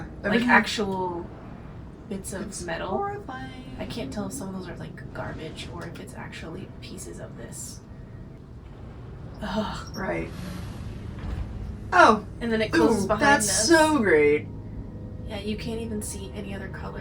like everything- actual bits of it's metal. horrifying. I can't tell if some of those are like garbage or if it's actually pieces of this. Ugh. Right. Oh, And then it closes ooh, behind that's us. so great. Yeah, you can't even see any other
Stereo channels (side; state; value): both; identical; correlation 1.00